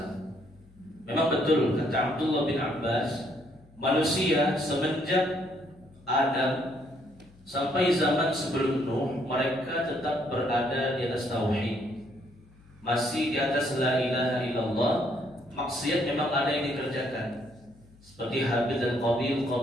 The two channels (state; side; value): noise; left; hum, 26 dB below the sound